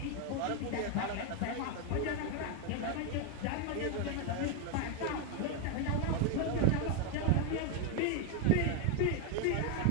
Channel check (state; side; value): different; both; correlation 0.01